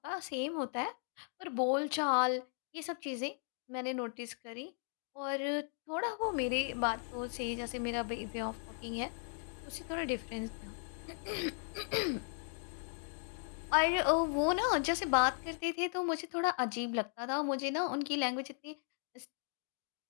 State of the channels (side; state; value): right; silent; 53 dB below the other